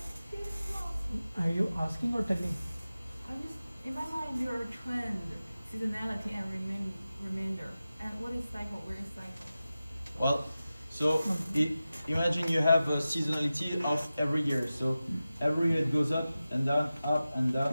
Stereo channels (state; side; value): inverted; both; correlation -0.95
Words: It's not. Are you asking or telling? I'm just, in my mind, there are trend, seasonality, and remainder. And what is cycle? Where is cycle? well, so imagine you have a seasonality of every year. So every year it goes up and down, up and